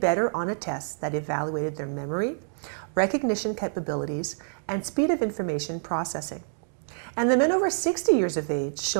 better on a test that evaluated their memory, recognition capabilities, and speed of information processing. And the men over 60 years of age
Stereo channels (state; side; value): silent; left; digital silence